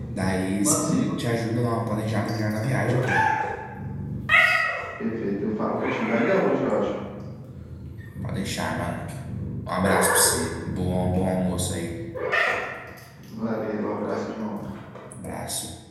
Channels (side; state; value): both; identical; correlation 1.00